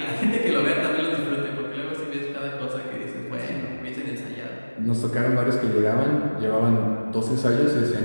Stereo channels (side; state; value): both; inverted; correlation -1.00